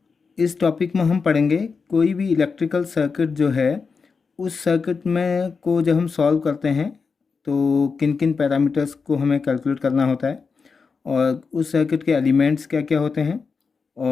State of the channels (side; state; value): right; quieter; 5.1 dB